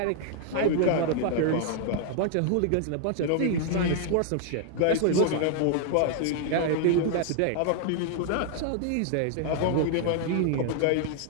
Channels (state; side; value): different; both; correlation 0.00